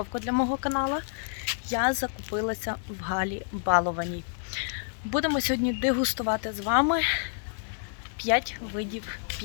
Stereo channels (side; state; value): right; silent; digital silence